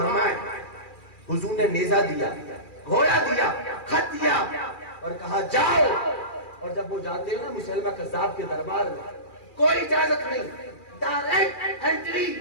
حضور نے نیزہ دیا, گھوڑا دیا, خط دیا اور کہا جاؤ. اور جب وہ جاتے ہیں نا مسلمہ کذاب کے دربار میں, کوئی اجازت نہیں, ڈائریکٹ انٹری.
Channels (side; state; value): right; late; 2.4 ms